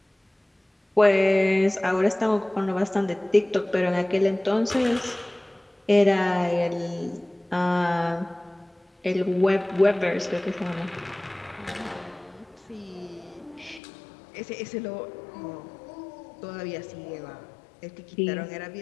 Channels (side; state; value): right; drops out; at 13.8 s